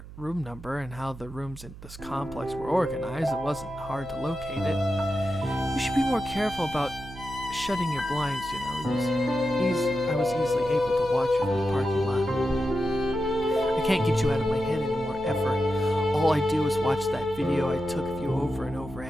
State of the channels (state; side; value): noise; right; hum, 15 dB below the sound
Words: room number and how the rooms in this complex were organized, it wasn't hard to locate it. You should be more careful about shutting your blinds, you know. I was easily able to watch you from the parking lot. I can't get you out of my head anymore, ever. All I do is watch that video I took of you over and over,